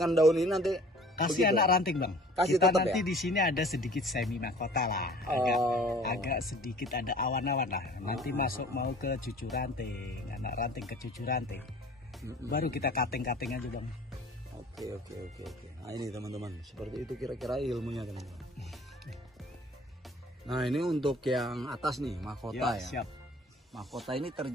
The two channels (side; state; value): both; normal; correlation 0.49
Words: daun ini nanti? Kasih begitu? Anak ranting Bang. Kasih kita tetap nanti ya? Di sini ada sedikit semi mahkota lah. Agak sedikit ada awan-awan lah. Nanti masuk mau ke cucu ranting, anak ranting ke cucu ranting. Baru kita cutting aja Bang. Oke. Nah ini teman-teman, seperti itu kira-kira ilmunya teman-teman. Nah ini untuk yang atas nih mahkota ya. Siap. Mahkota ini